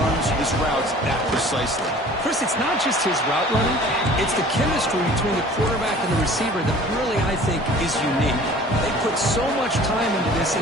his routes that precisely? Chris, it's not just his route running. It's the chemistry between the quarterback and the receiver that really, I think, is unique. They put so much time into this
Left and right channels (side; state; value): both; normal; correlation 0.47